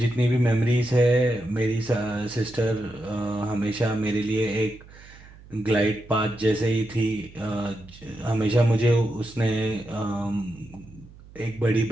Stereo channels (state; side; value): noise; right; hum, 21 dB below the sound